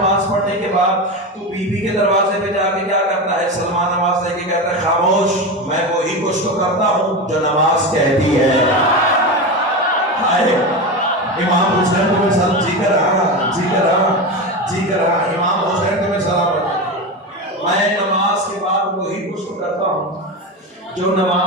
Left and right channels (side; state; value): both; normal; correlation 0.20